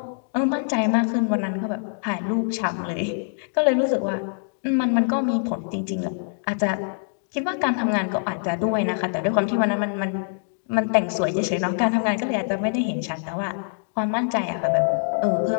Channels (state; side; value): silent; right; digital silence